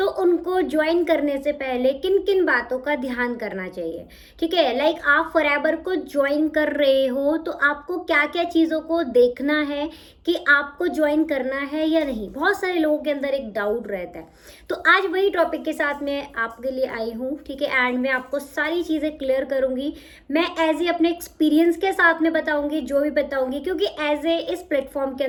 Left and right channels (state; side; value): identical; both; correlation 1.00